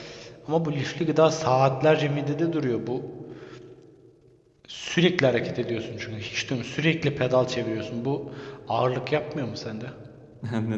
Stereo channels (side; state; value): both; identical; correlation 1.00